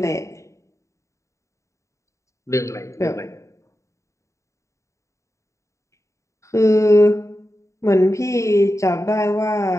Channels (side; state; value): right; late; 0.15 ms